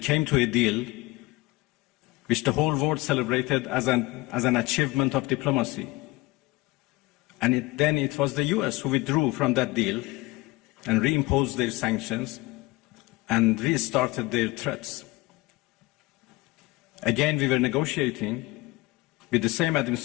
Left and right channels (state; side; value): quieter; right; 21.1 dB